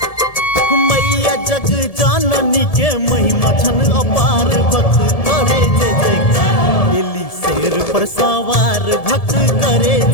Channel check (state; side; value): late; right; 1.7 ms